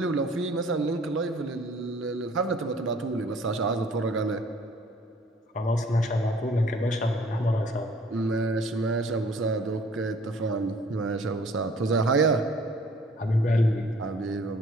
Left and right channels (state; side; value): normal; both; correlation 0.55